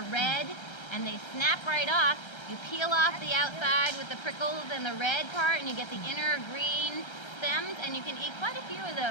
red and they snap right off, you peel off the outside with the prickles and the red part and you get the inner green stems, and you can eat quite a few of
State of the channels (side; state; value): right; late; 1.3 ms